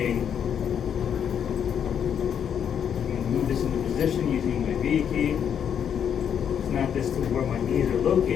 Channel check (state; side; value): quieter; right; 8.3 dB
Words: I'm gonna move this into position using my V key. Snap this to where my knees are